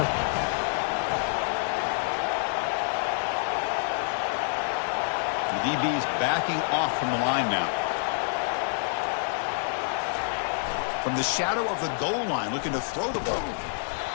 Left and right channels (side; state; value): right; silent; 60 dB below the other